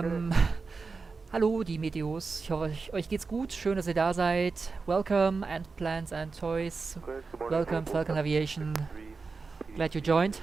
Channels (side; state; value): left; quieter; 4.4 dB